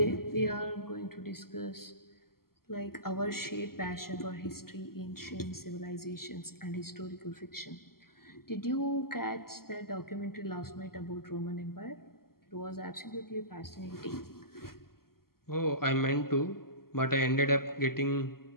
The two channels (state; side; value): late; right; 0.93 ms